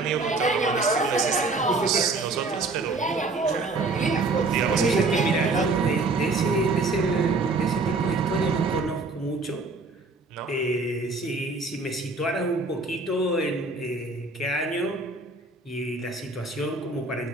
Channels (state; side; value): quieter; left; 3.5 dB